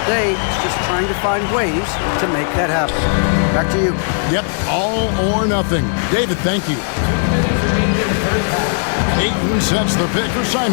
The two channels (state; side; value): silent; right; 68 dB below the other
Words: day, it's just trying to find ways to make that happen. Back to you. Yep, all or nothing. David, thank you. 2 minutes remaining in the first half. Ayton sets the pick for